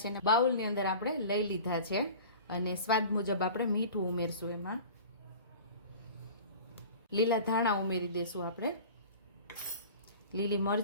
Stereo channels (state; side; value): inverted; both; correlation -0.39